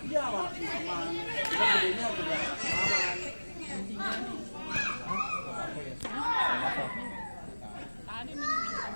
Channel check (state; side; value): inverted; both; correlation -1.00